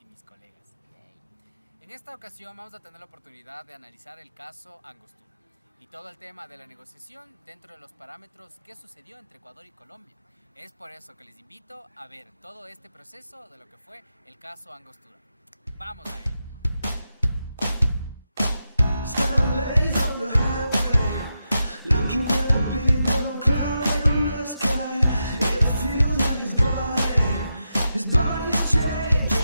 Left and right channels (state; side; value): inverted; both; correlation -0.87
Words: y mis colegas. En esta ocasión vamos a tener la oportunidad de analizar el caso Angostura y todo el tema de la negociación dentro de los parámetros que sucedió entre Ecuador y Colombia. Es por eso que les invito a ver todo este proceso de lo que fue el caso Angostura. ¡Vamos a ello!